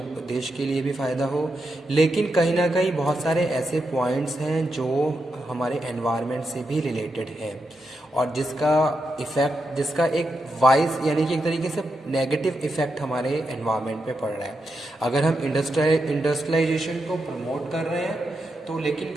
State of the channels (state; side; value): normal; both; correlation 0.85